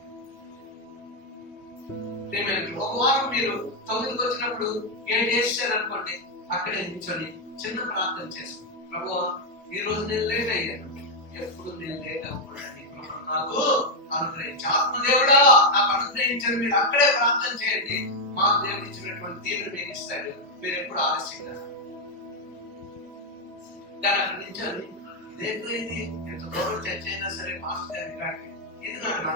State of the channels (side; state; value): both; normal; correlation 0.01